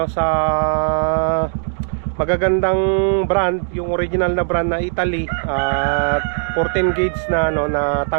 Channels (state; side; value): silent; left; 60 dB below the other